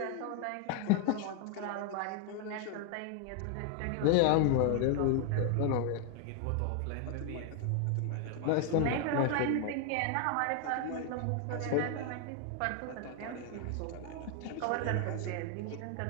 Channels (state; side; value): different; both; correlation 0.00